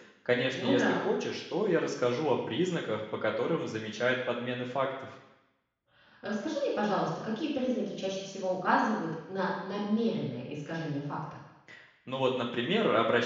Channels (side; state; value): both; identical; correlation 1.00